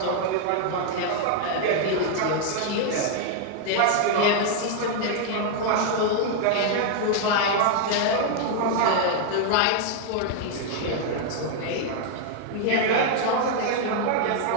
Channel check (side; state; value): both; different; correlation 0.00